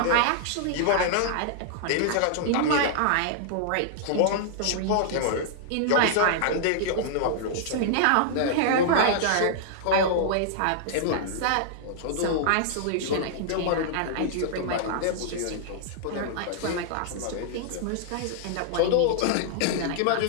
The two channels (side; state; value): both; different; correlation -0.01